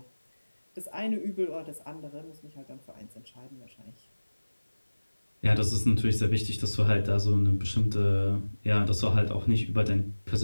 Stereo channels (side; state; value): both; inverted; correlation -1.00